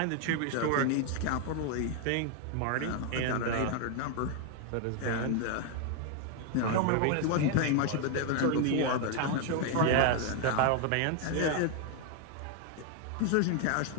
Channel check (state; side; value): different; both; correlation 0.01